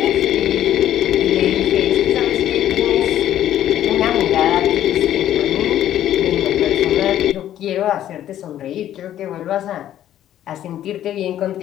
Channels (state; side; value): quieter; right; 11.8 dB